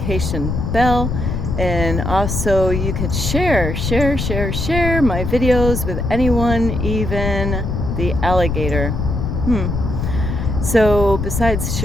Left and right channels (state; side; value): noise; left; rumble, 2 dB below the sound